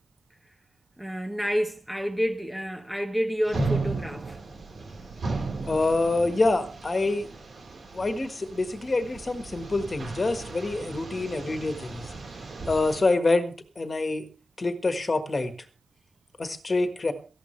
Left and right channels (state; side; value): normal; both; correlation 0.95